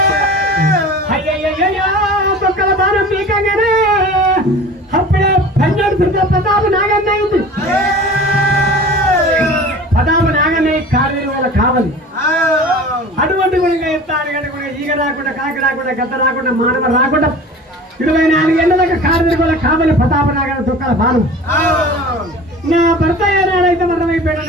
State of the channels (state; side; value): normal; both; correlation 0.39